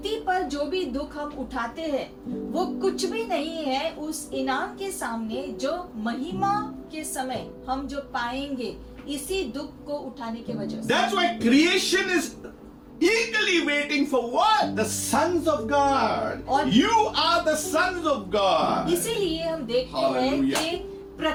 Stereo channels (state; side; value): identical; both; correlation 1.00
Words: पर जो भी दुख हम उठाते हैं वो कुछ भी नहीं है उस इनाम के सामने जो महिमा के समय हम जो पाएंगे इसी दुख को उठाने की वजह से। That's why creation is eagerly waiting for what? The sons of God. और- You are the sons of God. इसीलिए हम देखते हैं Hallelujah. कि